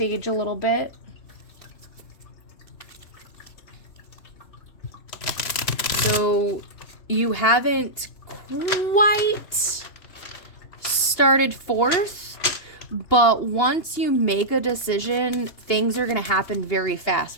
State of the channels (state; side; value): late; right; 2.8 ms